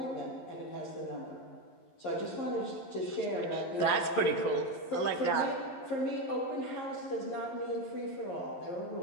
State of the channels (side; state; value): right; late; 11 ms